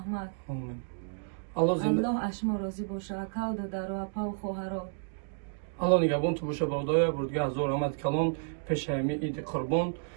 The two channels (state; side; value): silent; left; digital silence